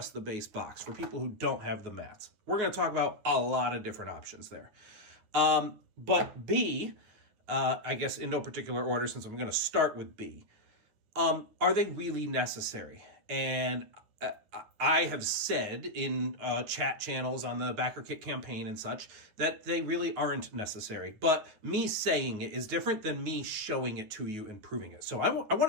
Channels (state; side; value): late; left; 9.6 ms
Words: the base box for people who don't have the mats. We're going to talk about a lot of different options there. But B, I guess in no particular order, since I'm going to start with B, are they really necessary? And I have said in chat channels on the Backerkit campaign and such that they really aren't necessary. But me saying it is different than me showing it to you and proving it. So I